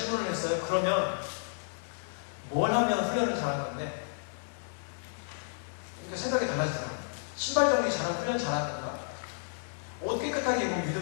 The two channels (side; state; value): right; silent; 57 dB below the other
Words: 했어요. 그러면 뭘 하면 훈련을 잘한 건데? 그러니까 생각이 달라지더라고요. 신발 정리 잘하면 훈련 잘하는 건가? 옷 깨끗하게 입으면